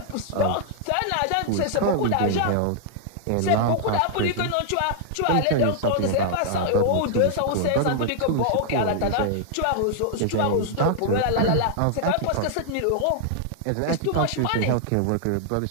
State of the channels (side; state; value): both; different; correlation 0.00